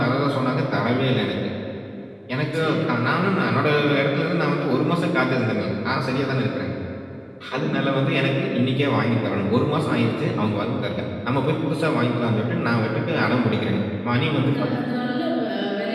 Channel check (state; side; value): identical; both; correlation 1.00